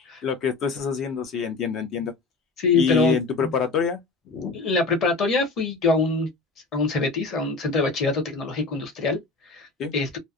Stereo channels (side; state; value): right; quieter; 3.8 dB